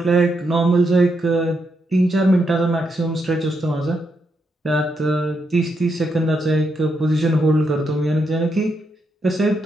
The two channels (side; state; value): both; normal; correlation 0.81